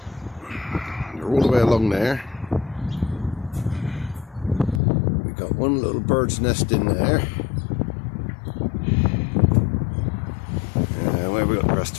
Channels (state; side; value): drops out; right; at 4.8 s